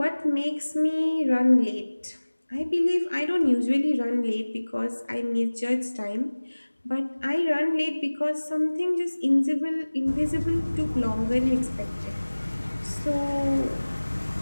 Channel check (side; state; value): both; inverted; correlation -1.00